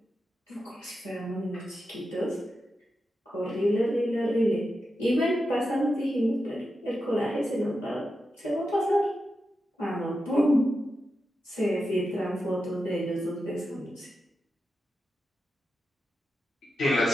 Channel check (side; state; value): both; normal; correlation 0.89